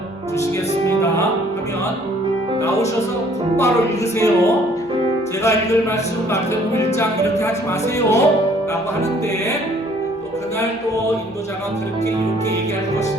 하면 나오셔서 곧바로 읽으세요. 제가 읽을 말씀 마태복음 1장 이렇게 하지 마세요 라고 하는데 또 그날 또 인도자가 그렇게 이렇게 얘기할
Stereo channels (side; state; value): both; normal; correlation 0.59